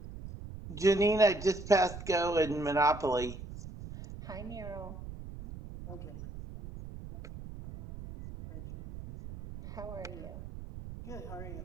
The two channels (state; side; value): noise; right; rumble, 11 dB below the sound